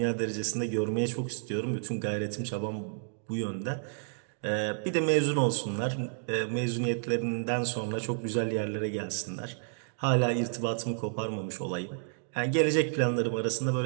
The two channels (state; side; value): silent; left; digital silence